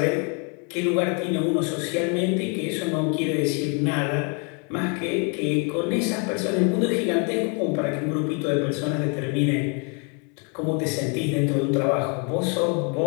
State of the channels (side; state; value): right; quieter; 36.4 dB